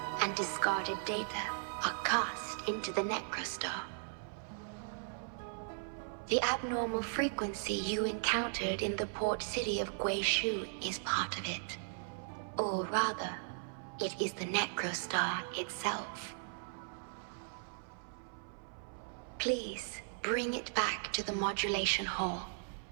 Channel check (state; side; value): silent; left; 53 dB below the other